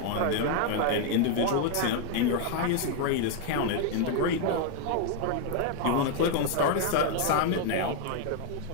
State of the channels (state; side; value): different; both; correlation 0.00